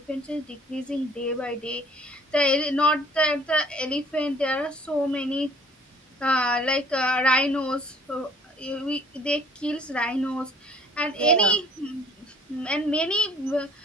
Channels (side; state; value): both; normal; correlation 0.55